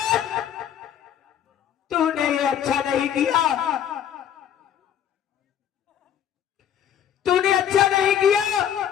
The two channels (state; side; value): quieter; right; 9.6 dB